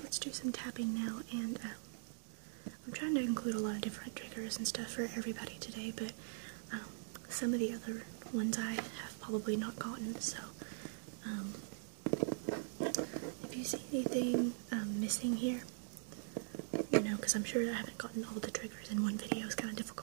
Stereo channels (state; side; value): silent; left; digital silence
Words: let's do some tapping now, and I'm trying to include a lot of different triggers and stuff for everybody today, but some of the other ones I have probably not gotten, so if you see anything missing here, you know, because I'm sure I haven't gotten all the triggers in one video, it's kind of